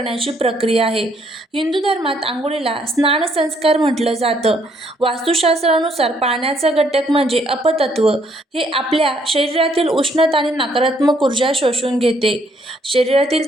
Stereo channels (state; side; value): normal; both; correlation 0.69